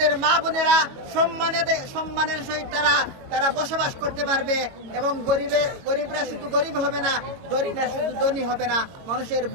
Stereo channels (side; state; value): left; late; 22 ms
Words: মা বোনেরা সম্মানের সহিত তারা বসবাস করতে পারবে। এবং গরিবরা শুধু গরিব হবে না, ধনীরা শুধু ধনী হবে না, মানুষের